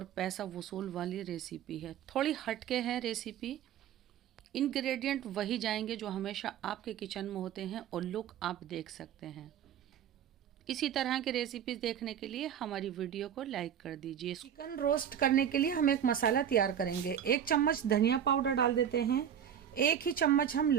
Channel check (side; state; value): left; quieter; 9.2 dB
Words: पैसा वसूल वाली रेसिपी है। थोड़ी हटके है रेसिपी। इंग्रेडिएंट वही जाएंगे जो हमेशा आपके किचन में होते हैं और लुक आप देख सकते हैं। इसी तरह की रेसिपीज देखने के लिए हमारी वीडियो को लाइक कर दीजिए। चिकन रोस्ट करने के लिए हम एक मसाला तैयार करेंगे। 1 चम्मच धनिया पाउडर डाल देते हैं। 1 ही चम्मच हम